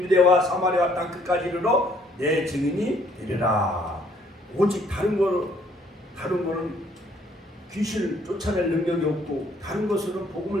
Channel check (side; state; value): both; normal; correlation 0.63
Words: 사마리아 땅 끝까지 이르러 내 증인이 되리라. 오직 다른 거는 귀신을 쫓아낼 능력이 없고 다른 것으로는